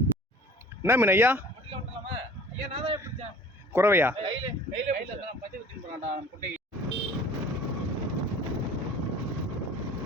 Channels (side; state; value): both; normal; correlation 0.46